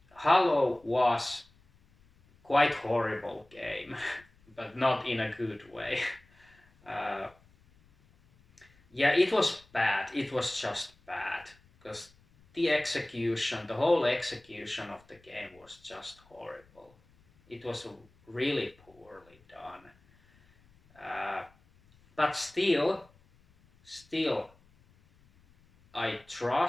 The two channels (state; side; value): noise; left; rumble, 30 dB below the sound